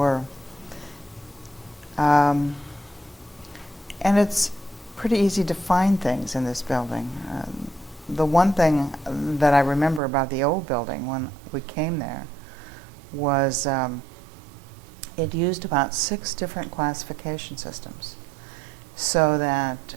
And it's pretty easy to find things in this building. The one thing that I remember about the old building when we came there was it used about 6 different classification systems, so that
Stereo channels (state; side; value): drops out; left; at 10.0 s